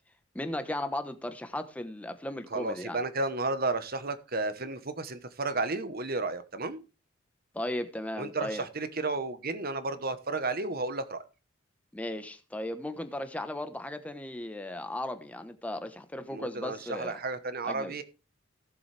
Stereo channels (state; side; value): normal; both; correlation 0.08